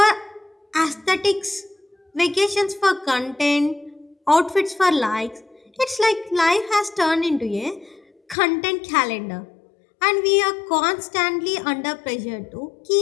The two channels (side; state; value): right; drops out; at 8.3 s